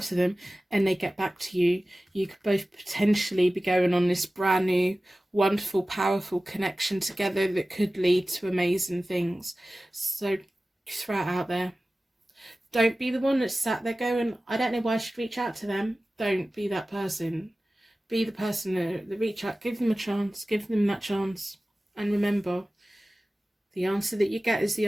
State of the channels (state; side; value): normal; both; correlation 0.96